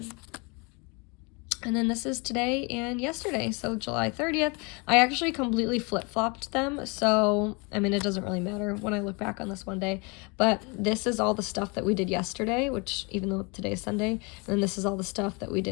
And then this is today and yesterday, so July 30th. I actually completely flip-flopped them, so, I mean, it doesn't really matter when I look back on this one day, but this is all the stuff that we did yesterday, which, even though today is Sunday, and then this is all the stuff that we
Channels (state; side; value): quieter; right; 30.2 dB